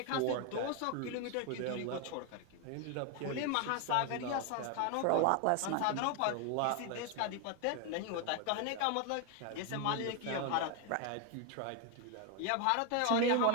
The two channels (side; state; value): both; different; correlation 0.01